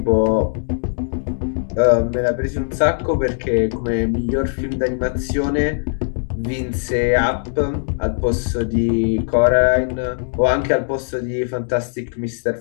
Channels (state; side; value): silent; right; digital silence